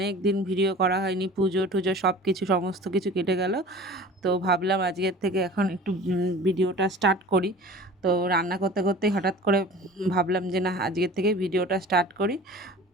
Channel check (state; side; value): normal; both; correlation 0.41